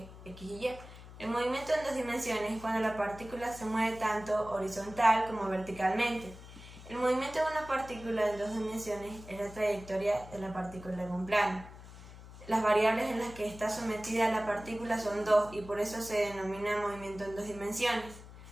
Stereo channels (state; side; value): noise; left; hum, 16 dB below the sound